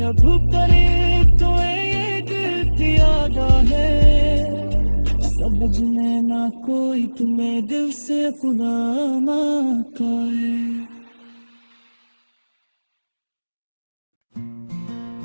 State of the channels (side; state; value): both; inverted; correlation -1.00